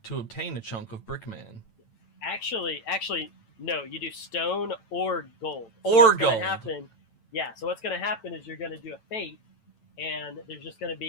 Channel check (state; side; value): late; right; 9.0 ms